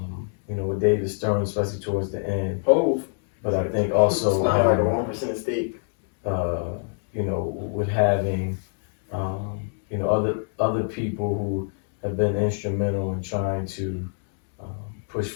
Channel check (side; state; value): right; silent; digital silence